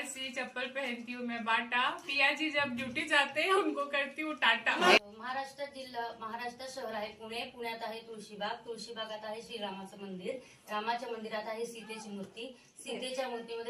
चप्पल पहनती हूँ मैं बाटा. पिया जी जब ड्यूटी जाते हैं उनको करती हूँ टाटा. महाराष्ट्र जिल्हा, महाराष्ट्र शहर आहे पुणे. पुण्यात आहे तुळशीबाग. तुळशीबागात आहे श्रीरामाचं मंदिर. रामाच्या मंदिरात आहे सीतेची मूर्ती. सीतेच्या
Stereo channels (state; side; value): identical; both; correlation 1.00